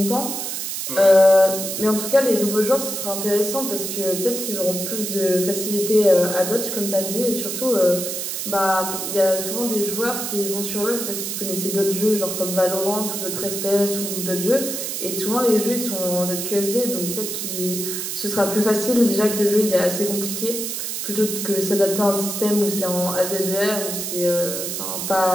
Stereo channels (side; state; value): right; noise; hiss, 4 dB below the sound